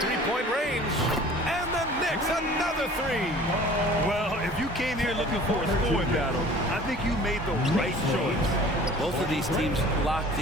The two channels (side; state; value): both; normal; correlation 0.46